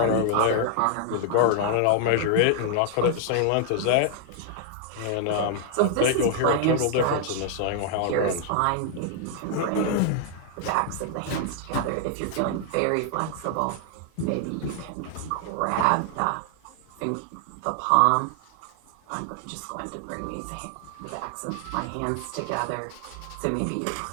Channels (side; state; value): both; different; correlation 0.00